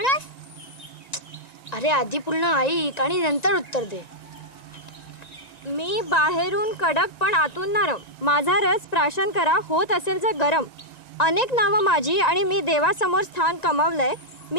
अरे आधी पूर्ण ऐक आणि नंतर उत्तर दे. मी बाहेरून कडक पण आतून नरम. माझा रस प्राशन करा, होत असेल जर गरम. अनेक नावं माझी आणि मी देवासमोर स्थान कमावलंय.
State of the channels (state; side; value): late; right; 1.9 ms